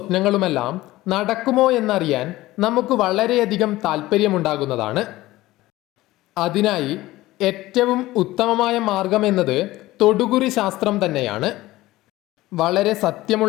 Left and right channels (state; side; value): quieter; right; 17.5 dB